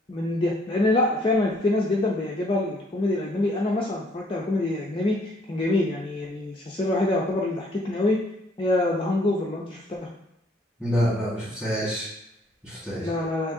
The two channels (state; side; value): normal; both; correlation 0.63